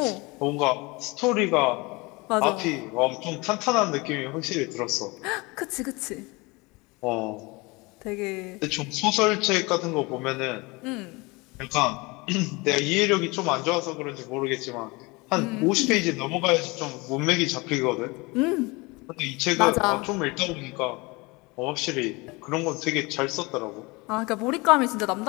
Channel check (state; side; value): quieter; right; 25.2 dB